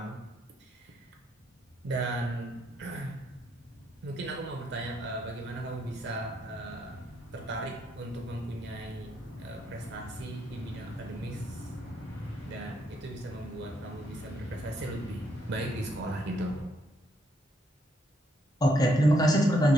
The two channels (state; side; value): normal; both; correlation 0.74